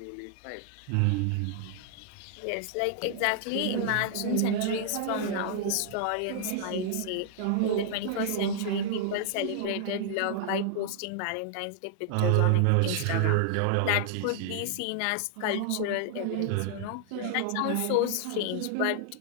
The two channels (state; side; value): different; both; correlation -0.01